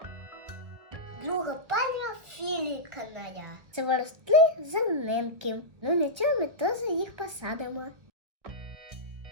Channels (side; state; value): left; late; 1.8 ms